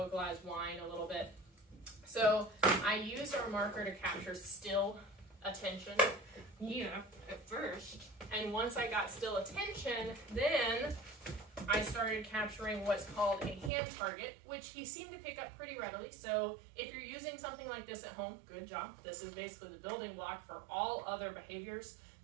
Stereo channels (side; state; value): left; drops out; at 13.7 s